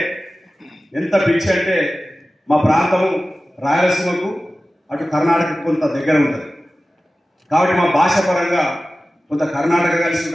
ఎంత పిచ్చి అంటే మా ప్రాంతము రాయలసీమకు అటు కర్ణాటకకు కొంత దగ్గర ఉంటుంది కాబట్టి మా భాష పరంగా కొంత కర్ణాటక కలిసి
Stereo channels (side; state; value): both; normal; correlation 0.96